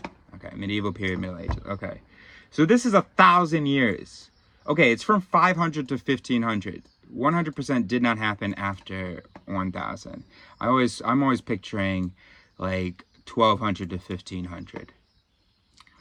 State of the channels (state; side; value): identical; both; correlation 1.00